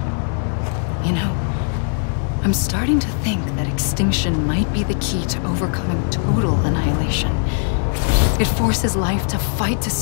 You know, I'm starting to think that extinction might be the key to overcoming total annihilation. It forces life to fight to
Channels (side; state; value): right; silent; digital silence